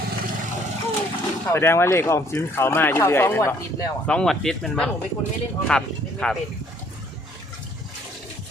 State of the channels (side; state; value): both; normal; correlation 0.62